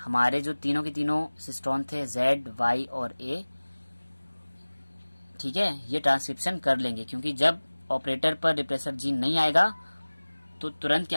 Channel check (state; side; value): inverted; both; correlation -1.00